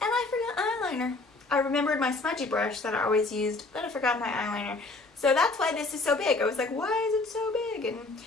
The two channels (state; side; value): quieter; right; 3.3 dB